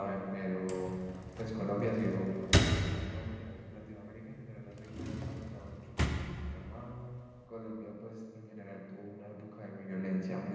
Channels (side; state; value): both; identical; correlation 1.00